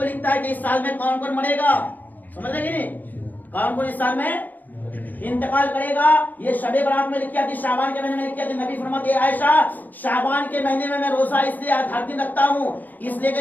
लिखता है कि इस साल में कौन कौन मरेगा। समझ रहे कि नहीं? कौन कौन इस साल में इंतकाल करेगा, ये शबे बारात में लिखी आती, शाबान के महीने में लिखी आती। नबी फरमाते हैं, आयशा शाबान के महीने में मैं रोजा इसलिए हर दिन रखता हूँ इसलिए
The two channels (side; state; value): right; late; 0.084 ms